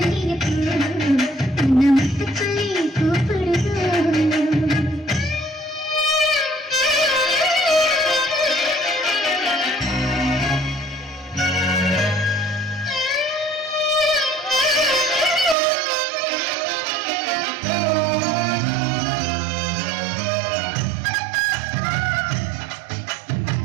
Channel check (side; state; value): left; drops out; at 15.6 s